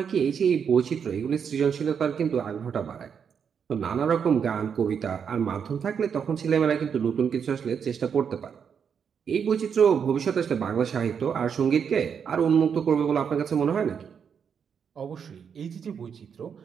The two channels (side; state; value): left; quieter; 7.1 dB